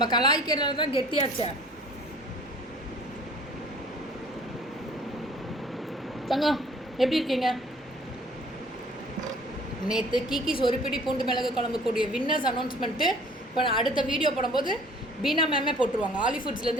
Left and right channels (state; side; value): normal; both; correlation 0.52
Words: கலாய்க்கிறதுல தான் கெட்டியாச்சே. தங்கம் எப்படி இருக்கீங்க? நேற்று கீக்கீஸ் ஒரு பிடி பூண்டு மிளகு குழம்பு கூடிய வின்னர்ஸ் அனௌன்ஸ்மெண்ட்டு இப்போ நான் அடுத்த வீடியோ போடும்போது பீனா மேமே போட்டுருவாங்க, ஆலி